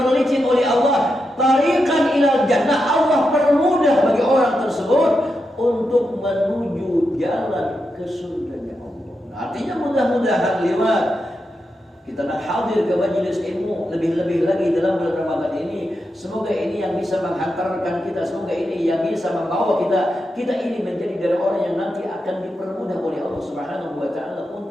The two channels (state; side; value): normal; both; correlation 0.87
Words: oleh Allah, tariqan ilal jannah, Allah permudah bagi orang tersebut untuk menuju jalan ke surganya Allah. Nah, artinya mudah-mudahan lewat kita nak hadir ke majelis ilmu, lebih-lebih lagi dalam bulan Ramadan ini, semoga ini yang bisa menghantarkan kita, semoga ini yang bisa membawa kita ini menjadi dari orang yang nanti akan dipermudah oleh Allah Subhanahu wa taala